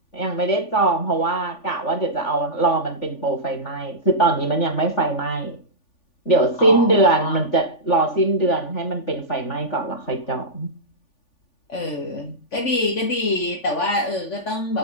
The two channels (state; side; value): late; right; 3.4 ms